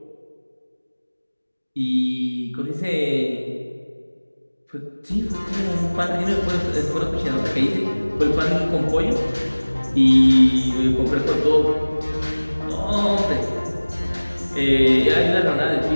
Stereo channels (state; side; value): inverted; both; correlation -1.00